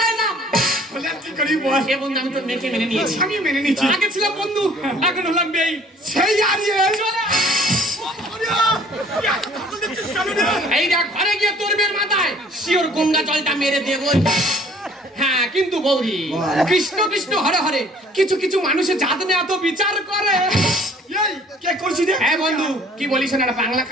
নাম। বলে আর কি করি বল? এ বন্ধু আমি তোর মেয়েকে মেনে নিয়েছি। আমি মেনে নিচ্ছি। আগে ছিলাম বন্ধু, এখন হলাম বেই। সেই আরিয়ে এই দেখ, ঘরে গিয়ে তোর মেয়ের মাথায় শিওর গঙ্গা জলটা মেরে দেবো। হ্যাঁ কিন্তু গৌরী, কৃষ্ণ কৃষ্ণ হরে হরে, কিছু কিছু মানুষের জাত নিয়ে এত বিচার করে। এই কে করছিস রে? হ্যাঁ বন্ধু, কি বলিস না, বাংলা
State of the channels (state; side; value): normal; both; correlation 0.55